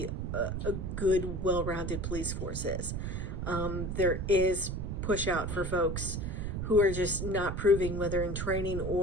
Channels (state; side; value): noise; right; rumble, 3 dB below the sound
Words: a good, well-rounded police force is. There is push out for folks who are just not proving, whether in training